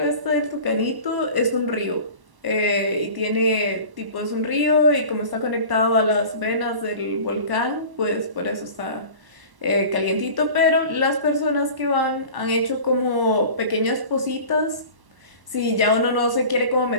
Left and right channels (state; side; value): late; left; 1.1 ms